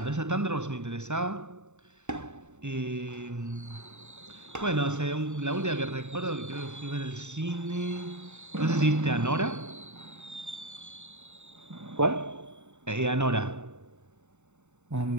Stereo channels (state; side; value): late; left; 0.83 ms